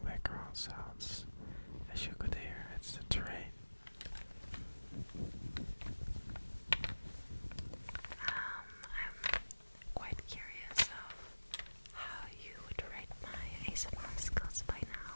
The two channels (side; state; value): both; inverted; correlation -1.00